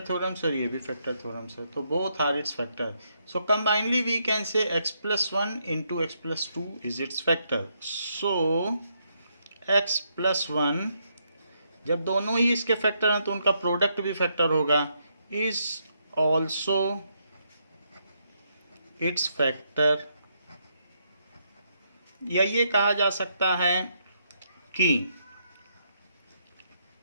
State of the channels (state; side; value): inverted; both; correlation -0.77